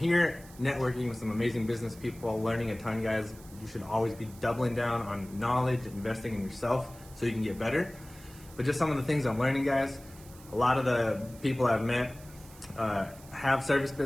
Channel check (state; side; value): noise; right; hiss, 21 dB below the sound